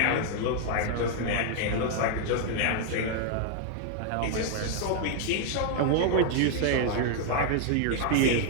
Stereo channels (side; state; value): both; different; correlation 0.00